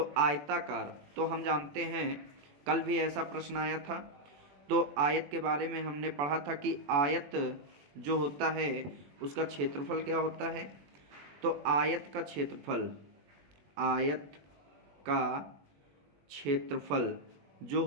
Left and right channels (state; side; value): late; left; 21 ms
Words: आयताकार, तो हम जानते हैं कल भी ऐसा प्रश्न आया था। तो आयत के बारे में हमने पढ़ा था कि आयत जो होता है उसका क्षेत्रफल क्या होता है? तो आयत का क्षेत्रफल जो